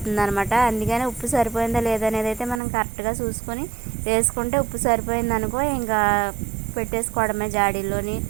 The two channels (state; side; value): drops out; left; at 2.6 s